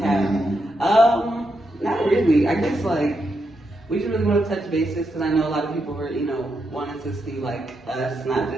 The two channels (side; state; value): both; normal; correlation 0.83